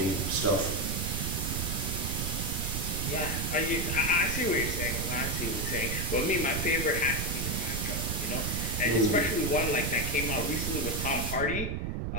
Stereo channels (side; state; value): right; noise; rumble, 2 dB below the sound